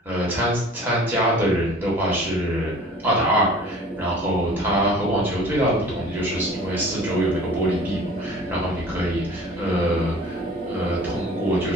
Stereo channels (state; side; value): normal; both; correlation 0.46